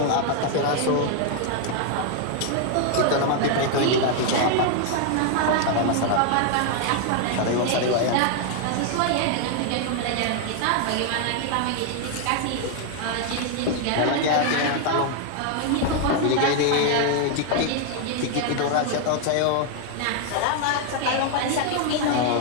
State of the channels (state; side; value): different; both; correlation 0.00